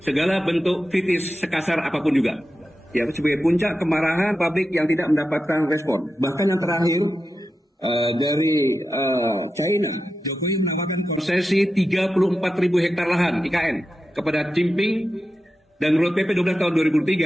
segala bentuk kritis sekasar apapun juga. Ya, sebagai puncak kemarahan publik yang tidak mendapatkan respon. Bahkan yang terakhir dari China, Jokowi menawarkan konsesi 34.000 hektar lahan IKN kepada Jinping. Dan menurut PP 12 tahun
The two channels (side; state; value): both; normal; correlation 0.91